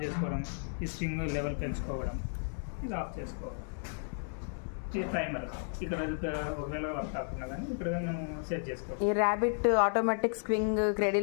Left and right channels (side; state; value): right; silent; 56 dB below the other